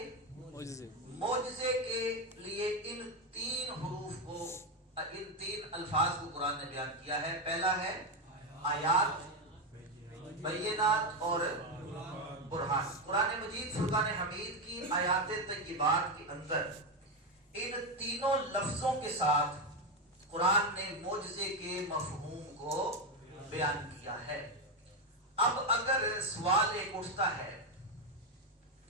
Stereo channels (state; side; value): normal; both; correlation 0.09